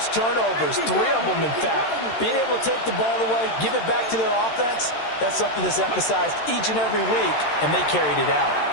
turnovers, 3 of them in fact. Being able to take the ball away, give it back to their offense, that's something that's emphasized each and every week, and they carried it out.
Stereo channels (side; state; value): right; late; 13 ms